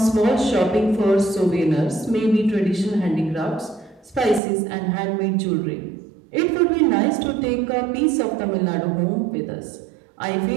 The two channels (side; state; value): left; drops out; at 4.4 s